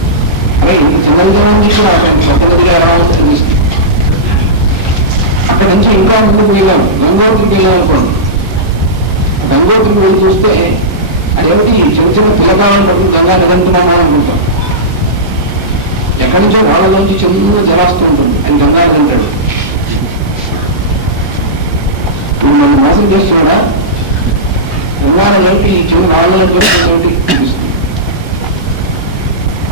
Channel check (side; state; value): both; normal; correlation -0.14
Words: అరే ఇంత చిన్నదిగా ఉంది కూడా పెద్ద నదిగా ఎలా వస్తుంది. అక్కడ నుంచి ఇంకా ముందుకు వెళ్ళాం, గంగోత్రికి వెళ్ళాం అనుకోండి. గంగోత్రికి వెళ్ళి చూస్తే అదేమిటి చిన్న చిన్న పిల్లకాలను పట్టుకుని గంగా నిరంతరమా అనుకుంటాం. ఎక్కడి నుంచో వాళ్ళలోంచి చిన్న జలాస్తూ ఉంటుంది. ఆయన గంగా నిరంటాడు. ఇప్పుడు మనం మోసం చేస్తున్నాడా? గంగానంటే ఈ చిన్న వాళ్ళని చూస్తుంది.